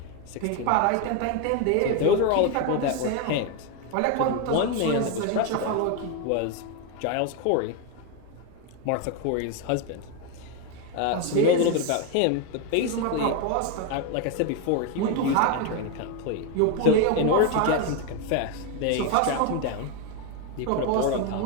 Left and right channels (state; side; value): different; both; correlation 0.01